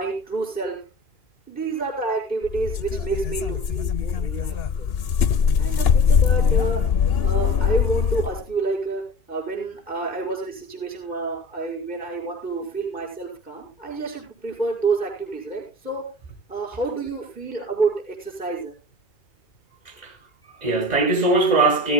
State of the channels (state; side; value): late; right; 2.8 ms